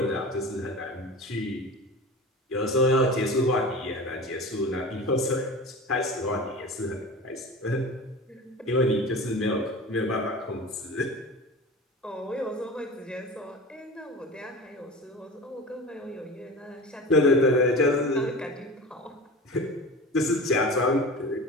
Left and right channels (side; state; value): both; normal; correlation 0.33